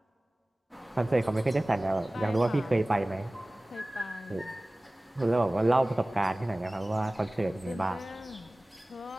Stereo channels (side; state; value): both; normal; correlation 0.98